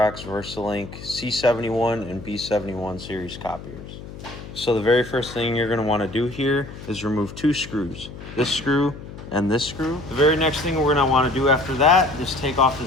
Versalink C71 and B71 series copiers. So the very first thing you're going to want to do here is remove two screws, this screw and this screw. The very next thing we're going to want to do after that is take off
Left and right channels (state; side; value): noise; left; hum, 13 dB below the sound